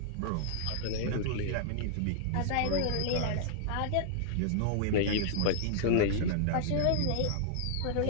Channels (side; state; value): both; different; correlation -0.01